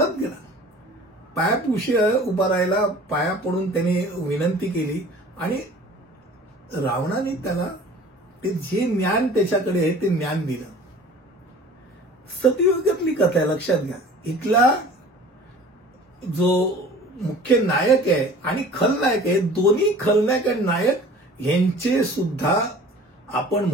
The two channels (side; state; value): both; normal; correlation 0.45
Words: गेला, पायापाशी उभा राहिला, पाया पडून त्याने विनंती केली आणि रावणाने त्याला ते जे ज्ञान त्याच्याकडे आहे ते ज्ञान दिलं. सतयुगातली कथा आहे, लक्षात घ्या. इथला जो मुख्य नायक आहे आणि खलनायक आहे, दोन्ही खलनायक आणि नायक यांचे सुद्धा आपण